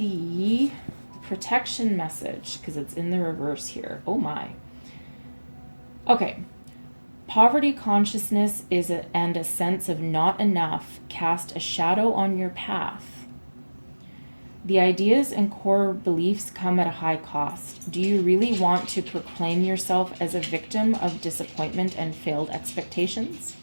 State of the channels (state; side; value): inverted; both; correlation -1.00